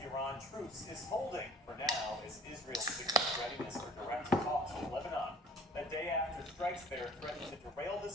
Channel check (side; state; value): both; normal; correlation 0.51